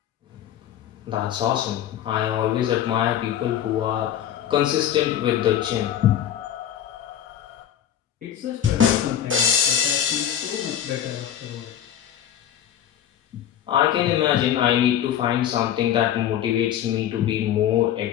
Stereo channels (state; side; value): quieter; right; 10.4 dB